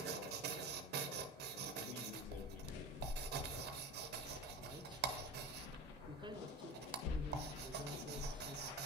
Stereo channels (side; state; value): both; normal; correlation 0.30